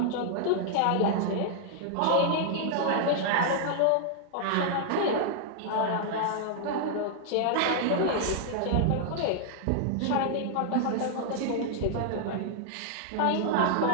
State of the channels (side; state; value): both; different; correlation -0.01